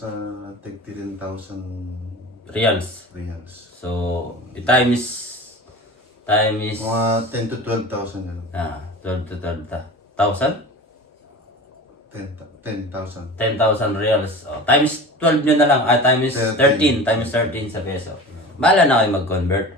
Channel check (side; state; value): both; normal; correlation 0.34